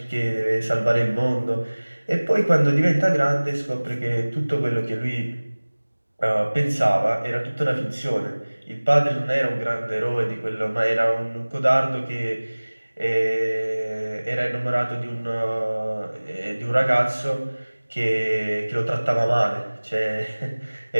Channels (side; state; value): both; inverted; correlation -1.00